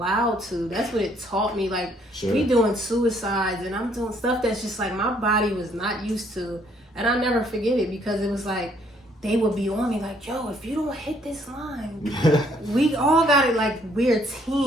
to. That's what it taught me. Like we doing suicides, and I'm doing stuff that's just like my body was not used to, and I'll never forget it, because it was like they would be on me like, yo, if you don't hit this line, we all got it. Like we're a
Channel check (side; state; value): both; normal; correlation 0.66